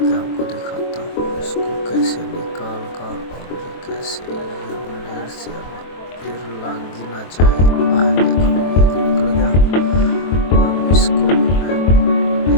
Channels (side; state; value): right; late; 23 ms